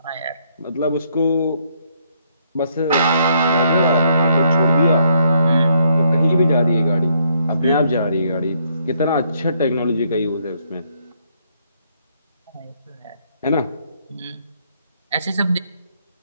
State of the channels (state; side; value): inverted; both; correlation -0.71